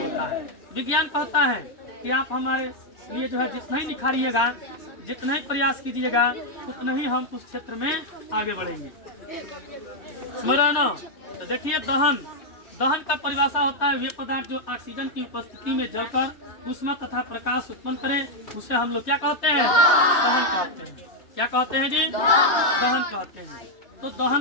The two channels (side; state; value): right; late; 3.3 ms